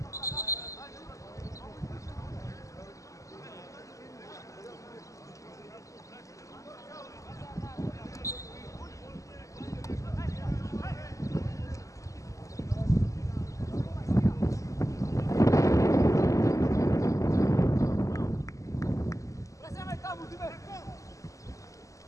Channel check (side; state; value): right; late; 0.16 ms